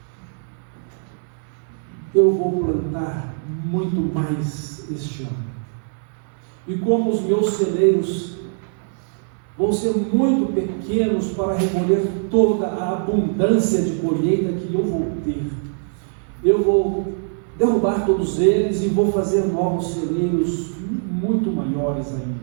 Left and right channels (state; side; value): silent; left; 64 dB below the other